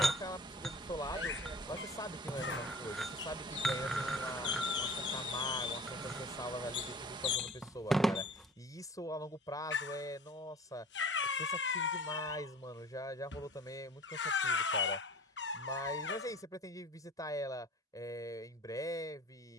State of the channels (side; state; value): both; normal; correlation 0.43